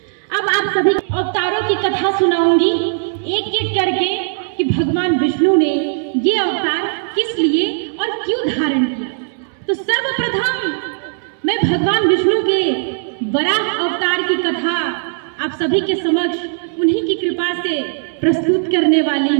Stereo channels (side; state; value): left; silent; 68 dB below the other